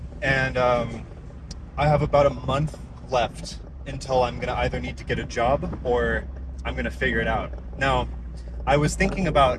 and I have about a month left until I'm gonna either need to get a job or I'm gonna figure it out. Now, I was thinking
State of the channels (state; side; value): identical; both; correlation 1.00